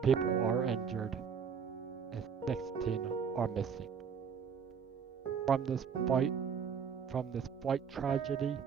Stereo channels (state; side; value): quieter; left; 6.8 dB